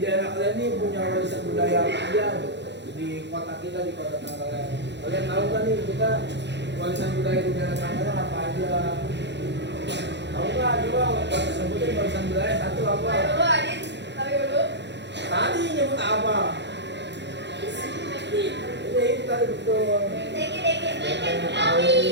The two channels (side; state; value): left; late; 0.51 ms